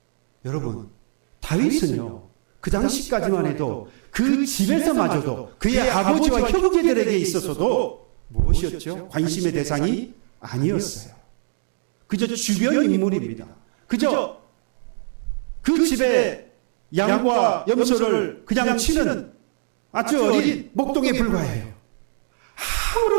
여러분, 다윗은요, 그 당시까지만 해도 그 집에서마저도 그의 아버지와 형제들에게 있어서도 무엇이었죠? 관심의 대상이 아니었어요. 그저 주변 인물입니다. 그저 그 집에 양과 염소를 그냥 치는 아주 어린 목동에 불과해요.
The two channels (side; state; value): left; silent; digital silence